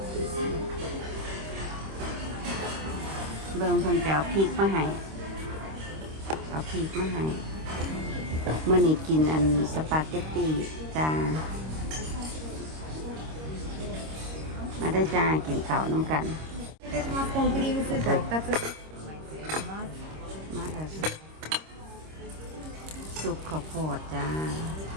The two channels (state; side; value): late; left; 26 ms